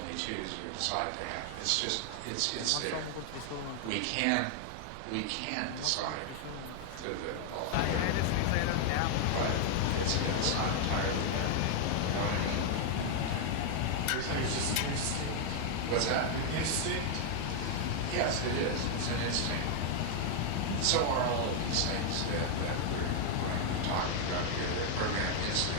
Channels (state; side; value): different; both; correlation 0.00